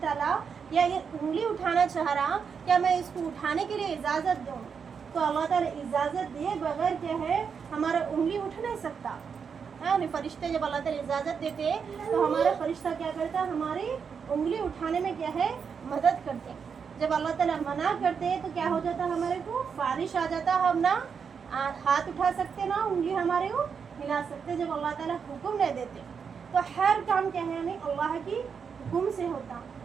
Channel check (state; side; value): quieter; left; 6.4 dB